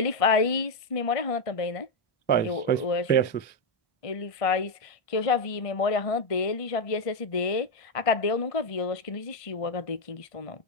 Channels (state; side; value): late; right; 1.5 ms